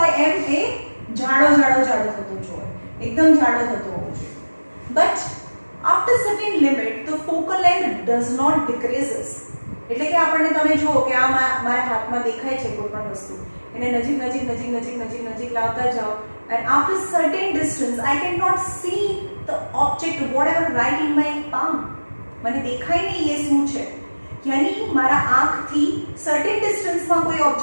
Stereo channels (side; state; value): both; inverted; correlation -1.00